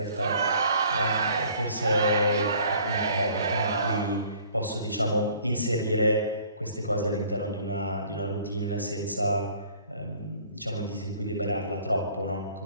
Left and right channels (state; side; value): inverted; both; correlation -0.54